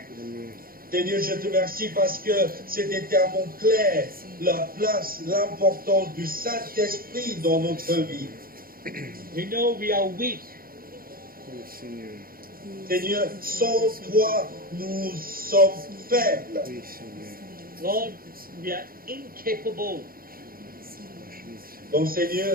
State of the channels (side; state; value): left; late; 0.42 ms